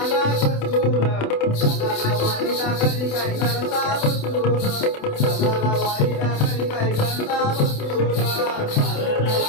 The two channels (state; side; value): late; right; 28 ms